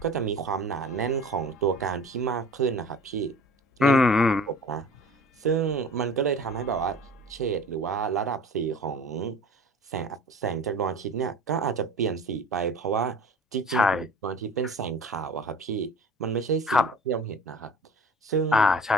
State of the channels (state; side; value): normal; both; correlation 0.42